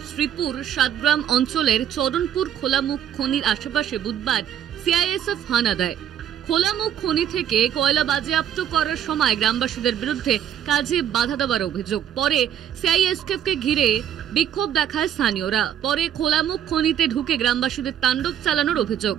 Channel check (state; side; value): quieter; left; 9.9 dB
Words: শ্রীপুর সাতগ্রাম অঞ্চলের চরণপুর খোলামুখ খনির আশেপাশে বুধবার সিআইএসএফ হানা দেয়। খোলামুখ খনি থেকে কয়লা বাজেয়াপ্ত করার সময় গ্রামবাসীদের বিরুদ্ধে কাজে বাধা দেওয়ার অভিযোগ। পরে সিআইএসএফকে ঘিরে বিক্ষোভ দেখায় স্থানীয়রা। পরে খোলামুখ খনিতে ঢুকে গ্রামবাসীদের তাণ্ডব চালানোর অভিযোগ।